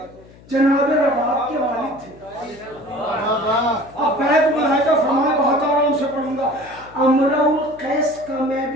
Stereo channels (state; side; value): noise; left; hum, 23 dB below the sound